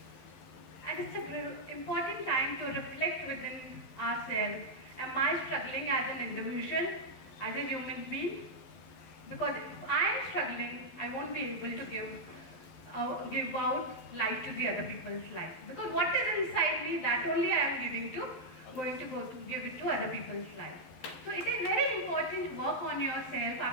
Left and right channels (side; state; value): right; late; 12 ms